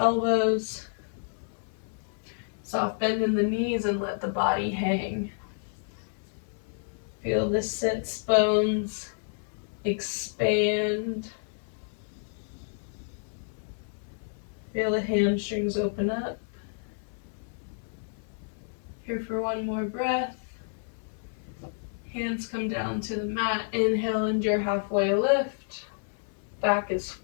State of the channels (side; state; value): right; silent; 58 dB below the other